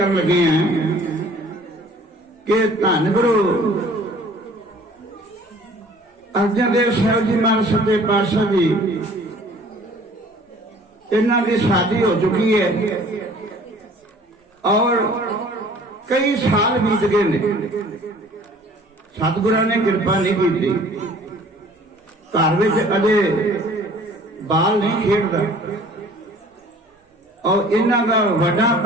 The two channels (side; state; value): both; normal; correlation 0.51